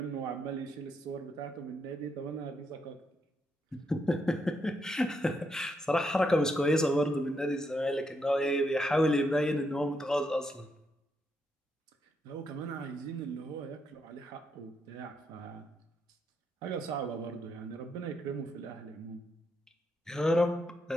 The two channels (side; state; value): both; normal; correlation 0.79